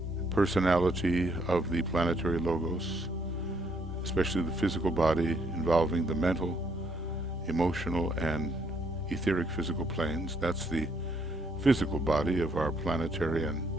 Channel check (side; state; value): both; normal; correlation 0.70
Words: personality of the planetary logos, especially the physical body, involving the mental, emotional, and etheric physical planes. That's the physical body of our planetary and